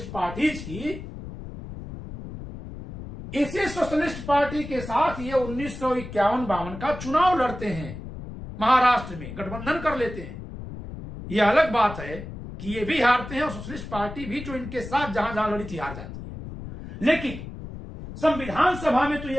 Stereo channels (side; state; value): left; noise; rumble, 11 dB below the sound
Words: पार्टीज की, इसी सोशलिस्ट पार्टी के साथ ये 1951-52 का चुनाव लड़ते हैं, महाराष्ट्र में गठबंधन कर लेते हैं। यह अलग बात है कि ये भी हारते हैं और सोशलिस्ट पार्टी भी जो इनके साथ जहां जहां लड़ी थी हार जाती है। लेकिन संविधान सभा में तो